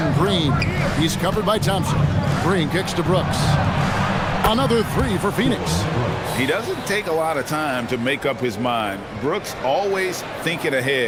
Green. He's covered by Thompson. Green kicks to Brooks. Another 3 for Phoenix. He doesn't take a lot of time to make up his mind. Brooks always thinking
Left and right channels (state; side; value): identical; both; correlation 1.00